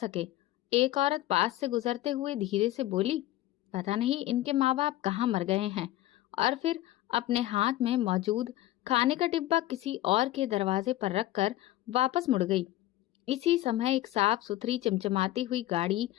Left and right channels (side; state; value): right; quieter; 15.2 dB